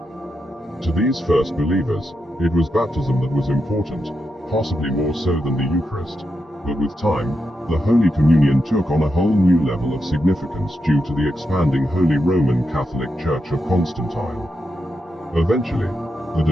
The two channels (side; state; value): both; normal; correlation 0.85